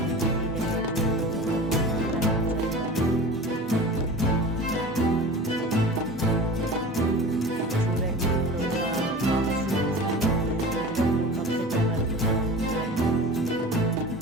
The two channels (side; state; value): both; normal; correlation 0.36